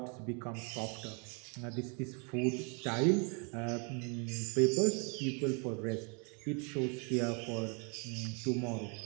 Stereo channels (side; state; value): left; quieter; 35.1 dB